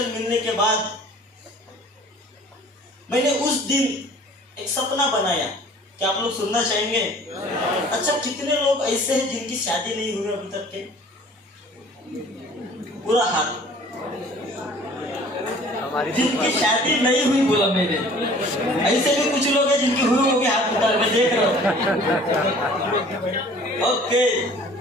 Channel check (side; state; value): both; normal; correlation 0.50